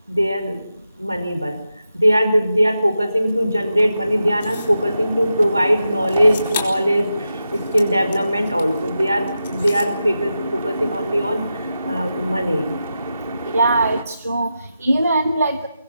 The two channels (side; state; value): both; inverted; correlation -0.89